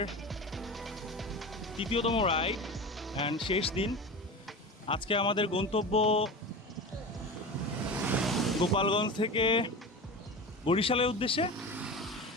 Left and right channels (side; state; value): both; normal; correlation 0.29